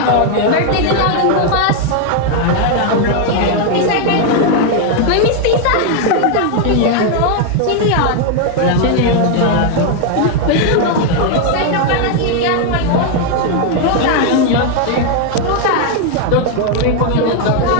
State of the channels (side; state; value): both; different; correlation 0.00